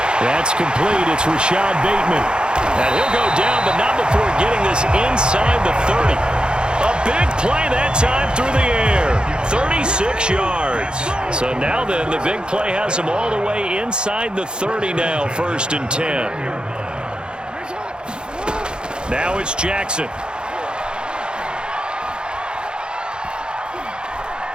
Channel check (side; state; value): left; late; 0.050 ms